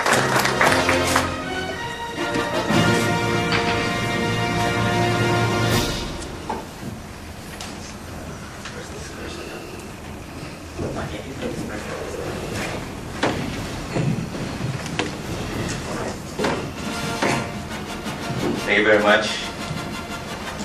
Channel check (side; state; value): both; identical; correlation 1.00